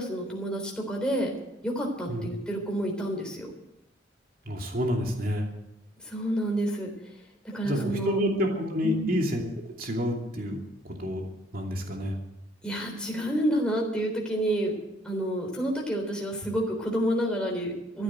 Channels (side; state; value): both; normal; correlation 0.63